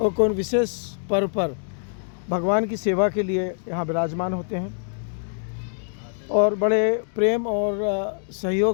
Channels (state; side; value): silent; right; digital silence